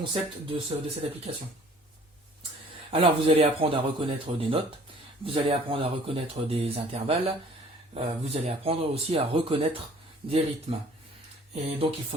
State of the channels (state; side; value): normal; both; correlation 0.53